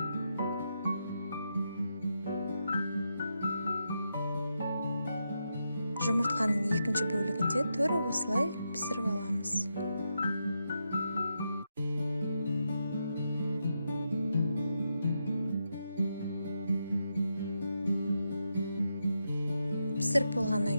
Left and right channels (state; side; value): inverted; both; correlation -0.85